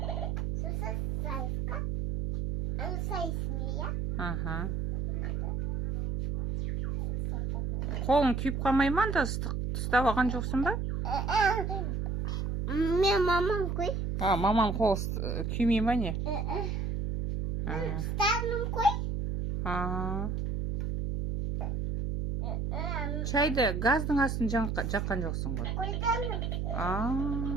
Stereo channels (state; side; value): noise; right; hum, 1 dB below the sound